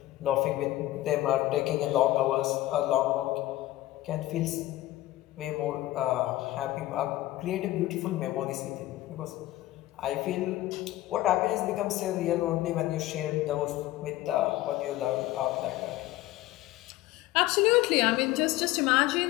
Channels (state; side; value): quieter; right; 16.2 dB